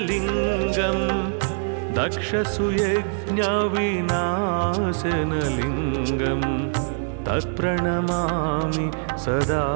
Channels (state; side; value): silent; left; 62 dB below the other